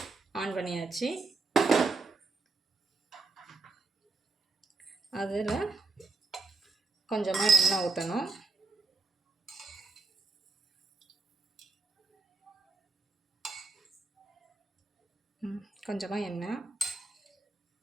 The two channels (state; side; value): quieter; left; 3.9 dB